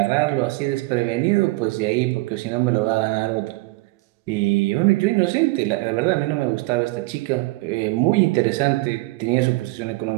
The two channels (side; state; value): left; quieter; 22.3 dB